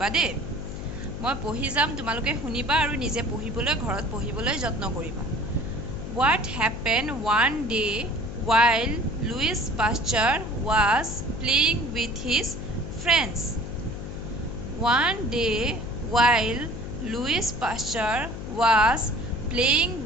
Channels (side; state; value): left; noise; hum, 8 dB below the sound